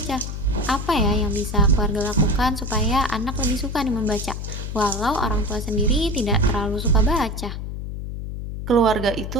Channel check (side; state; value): left; noise; hum, 6 dB below the sound